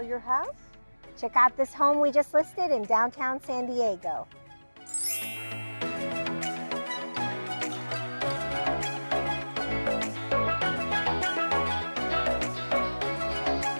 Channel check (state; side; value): inverted; both; correlation -1.00